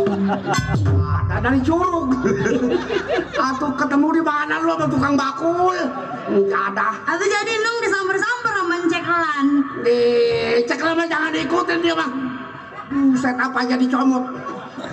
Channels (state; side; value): identical; both; correlation 1.00